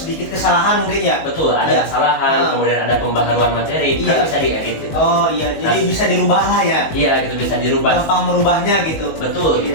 kesalahan mungkin ya. Betul, ada kesalahan, kemudian ada pembaharuan materi, kan bisa diedit gitu. Oh iya, jadi bisa dirubah lah ya. Iya, gitu bisa dirubah. Gampang merubahnya gitu. Betul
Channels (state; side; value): late; right; 19 ms